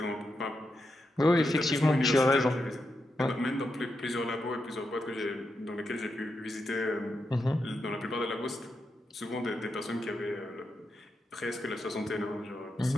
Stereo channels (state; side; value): normal; both; correlation 0.85